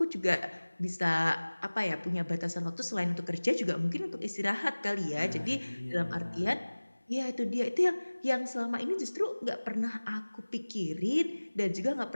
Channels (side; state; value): both; inverted; correlation -1.00